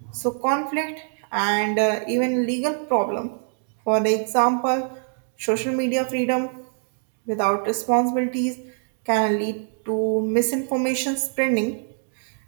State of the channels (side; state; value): left; silent; 63 dB below the other